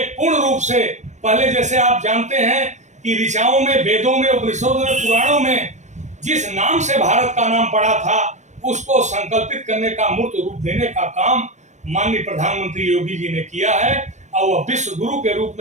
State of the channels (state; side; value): late; left; 0.34 ms